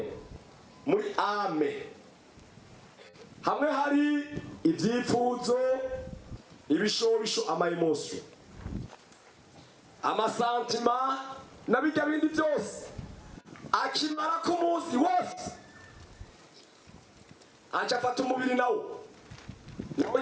muri ame hamwe hari ivyipfuzo, ibishobisho, amaemosio, amasantima na bijya bindi byose. Akimara ku munsi wose acafata umubiri nawo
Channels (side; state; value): both; identical; correlation 1.00